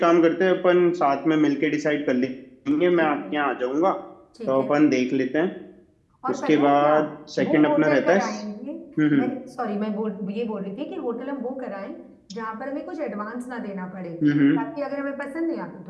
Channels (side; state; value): both; identical; correlation 1.00